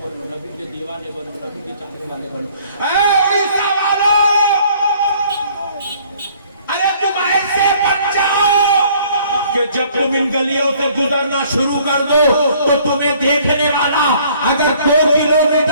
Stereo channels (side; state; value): both; inverted; correlation -0.58